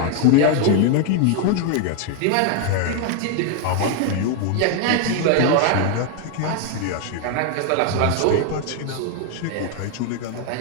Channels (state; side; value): different; both; correlation 0.00